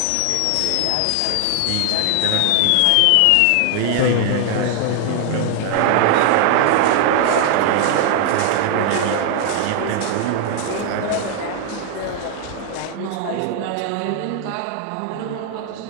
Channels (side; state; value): both; different; correlation 0.00